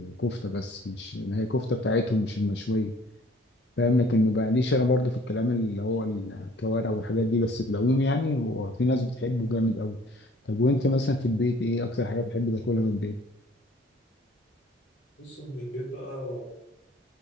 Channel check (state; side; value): normal; both; correlation 0.55